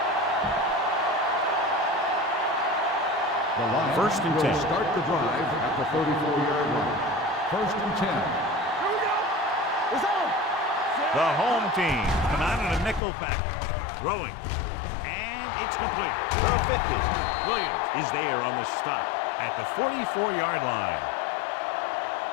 The Lions First and 10. will start the drive at the 34-yard line. First and 10. Here we go. It's on. The home team come out in a nickel package. Throwing. And it's complete. The 50. Williams is there on the stop at the 44-yard line.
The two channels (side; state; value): right; drops out; at 13.0 s